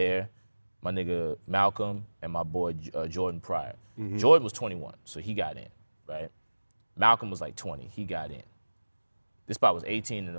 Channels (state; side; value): inverted; both; correlation -1.00